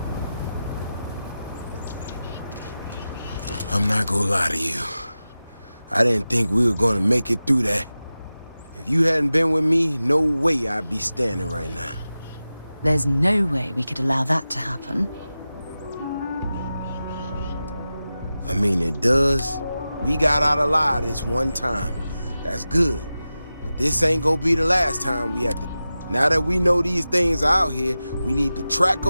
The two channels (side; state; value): both; inverted; correlation -0.94